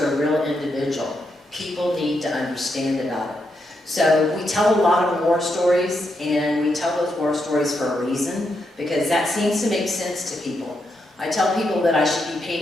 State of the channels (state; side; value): normal; both; correlation 0.82